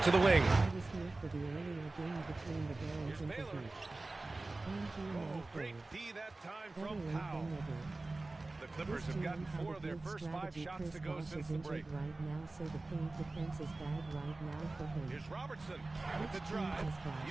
to the wing. I was here for the earlier game between the Barons and the Heat. Great D that time Better from late Powell. than never. The Clippers have gotten 4 of their first 5 shots to go since the break. Right now, so the paint defense is bad right now for him. Here's Robertson with the drive.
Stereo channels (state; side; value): quieter; left; 3.1 dB